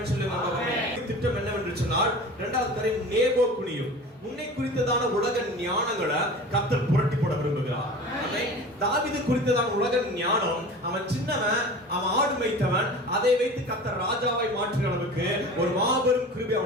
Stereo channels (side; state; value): both; normal; correlation 0.37